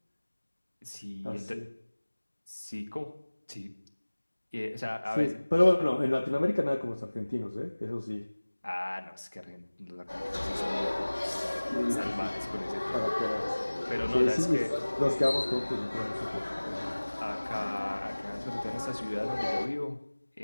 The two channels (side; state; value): both; inverted; correlation -1.00